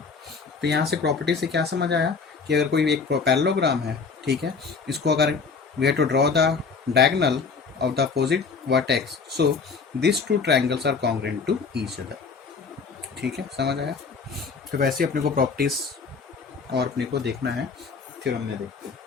तो यहाँ से प्रॉपर्टी से क्या समझ आया कि अगर कोई एक पैरेललोग्राम है, ठीक है, इसको अगर we have to draw the diagonal of the opposite vertex, so this two triangles are congruent to each other. ठीक है, समझ आया. तो वैसे अपने को प्रॉपर्टीज और अपने को देखना है, थ्योरम में देखते हैं.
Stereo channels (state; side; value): quieter; right; 5.1 dB